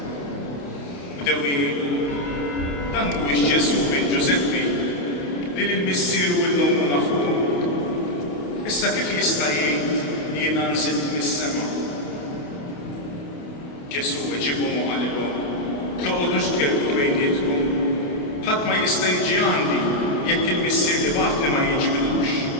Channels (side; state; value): right; late; 28 ms